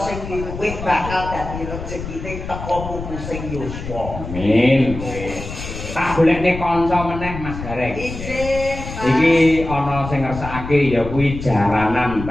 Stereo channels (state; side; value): noise; left; rumble, 9 dB below the sound